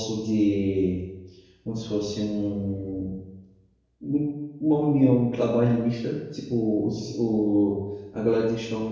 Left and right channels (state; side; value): identical; both; correlation 1.00